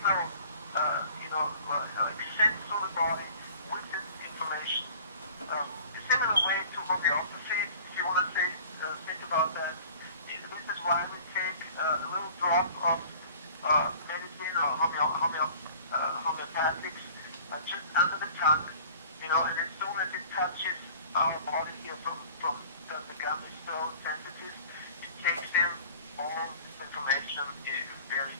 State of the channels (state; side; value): inverted; both; correlation -0.46